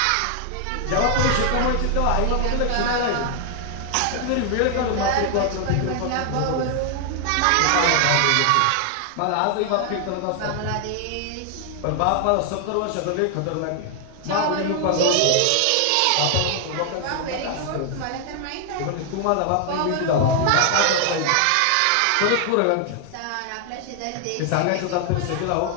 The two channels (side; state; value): both; different; correlation 0.00